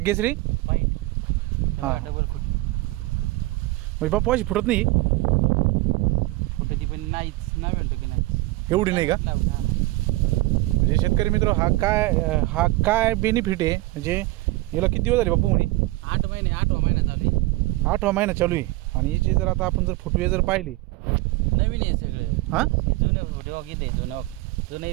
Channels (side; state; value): left; quieter; 19.9 dB